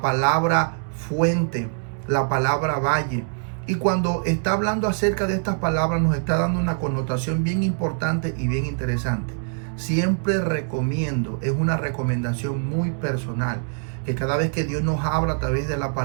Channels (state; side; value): silent; left; 63 dB below the other